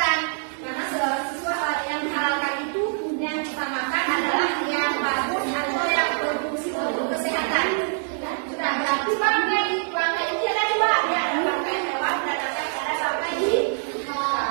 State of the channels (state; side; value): silent; left; digital silence